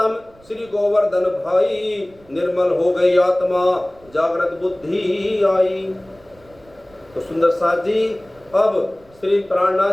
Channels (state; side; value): noise; right; rumble, 28 dB below the sound